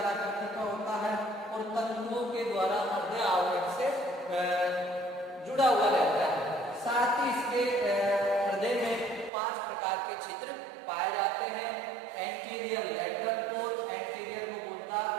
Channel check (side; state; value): left; drops out; at 9.3 s